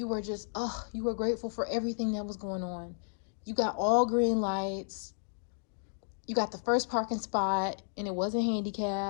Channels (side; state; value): right; silent; digital silence